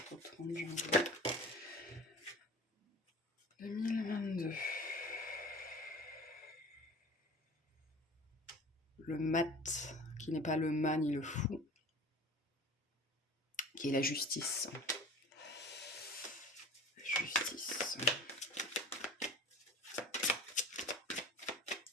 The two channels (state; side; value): normal; both; correlation 0.40